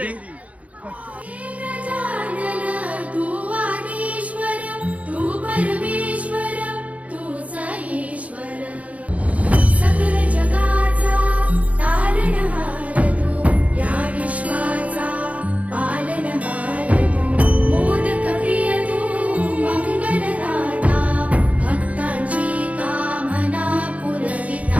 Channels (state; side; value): late; left; 0.068 ms